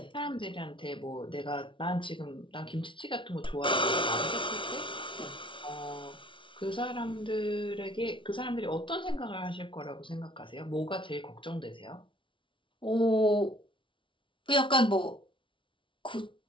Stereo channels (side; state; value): right; late; 0.25 ms